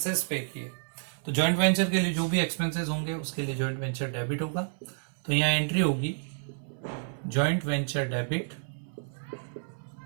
पे किए। तो जॉइंट वेंचर के लिए जो भी एक्सपेंसेस होंगे उसके लिए जॉइंट वेंचर डेबिट होगा। तो यहां एंट्री होगी joint venture debit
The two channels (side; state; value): left; silent; 58 dB below the other